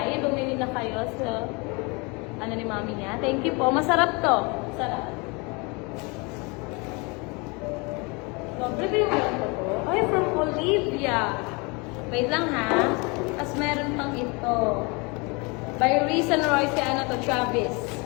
Bumili na kayo sa ano ni mami niya. Thank you po. Masarap to. Masarap. Prepare mo lang ito po. Ay, from Olivia. Wait lang ha. Tapos meron pang ito. By Reese and Roy, si ano to, Travis.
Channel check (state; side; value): quieter; right; 29.0 dB